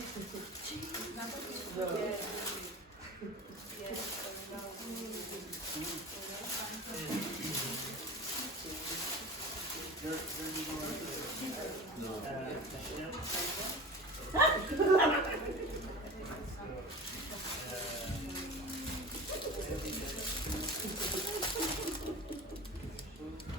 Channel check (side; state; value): both; normal; correlation 0.33